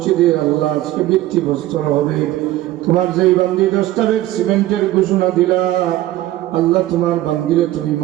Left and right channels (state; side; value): quieter; left; 15.3 dB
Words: আল্লাহ আজকে ভিত্তিপ্রস্তর হবে। তোমার যেই বান্দি 10টা ব্যাগ সিমেন্টের ঘোষণা দিলা, আল্লাহ তোমার বান্দিরে তুমি